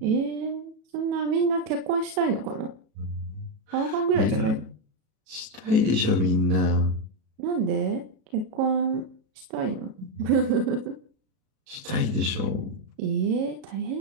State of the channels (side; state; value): left; late; 37 ms